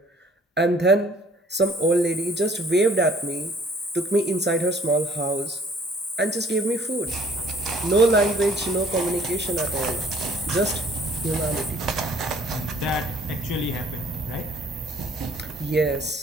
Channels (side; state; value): both; normal; correlation 0.57